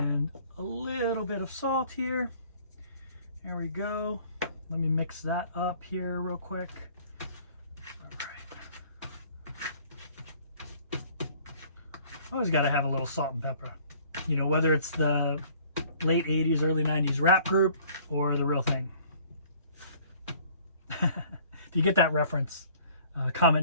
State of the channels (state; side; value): inverted; both; correlation -0.54